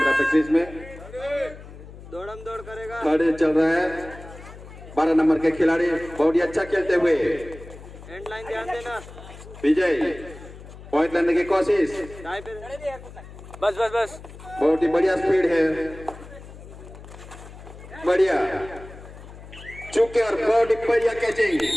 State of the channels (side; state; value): left; noise; hum, 16 dB below the sound